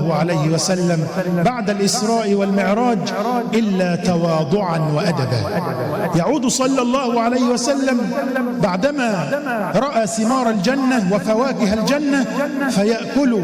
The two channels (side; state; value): both; identical; correlation 1.00